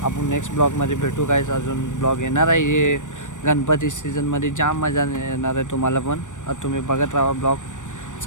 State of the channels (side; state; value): right; late; 0.86 ms